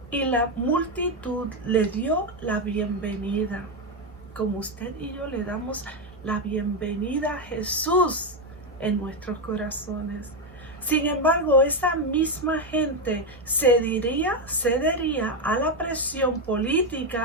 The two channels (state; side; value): normal; both; correlation 0.07